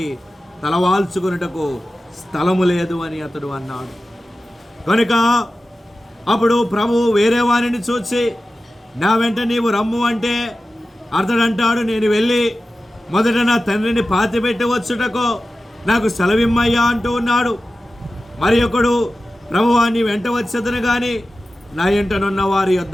తలవాల్చుకున్నటకు స్థలము లేదు అని అతడు అన్నాడు. కనుక అప్పుడు ప్రభు వేరే వారిని చూసి నా వెంట నీవు రమ్ము అంటే అతడు అంటాడు, నేను వెళ్ళి మొదట నా తండ్రిని పాతిపెట్టి వచ్చుటకు నాకు సెలవిమ్మయ్యా అంటూ ఉన్నాడు. మరి ఒకడు ప్రభువా నీ వెంట వచ్చేదను కానీ నా ఎంటనున్న వారి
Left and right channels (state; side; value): normal; both; correlation 0.94